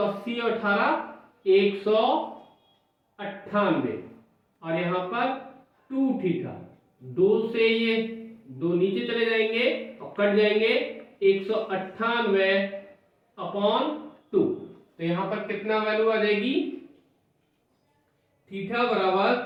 और 18 198, और यहां पर 2 थीटा, 2 से ये 2 नीचे चले जाएंगे और कट जाएंगे, 198 अपॉन 2, तो यहां पर कितना वैल्यू आ जाएगी, थीटा बराबर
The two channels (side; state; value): both; identical; correlation 1.00